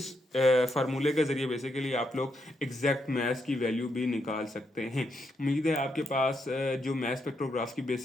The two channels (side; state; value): both; normal; correlation 0.80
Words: फार्मूले के जरिए बेसिकली आप लोग एग्जैक्ट मास की वैल्यू भी निकाल सकते हैं। उम्मीद है आपके पास जो मास स्पेक्ट्रोग्राफ की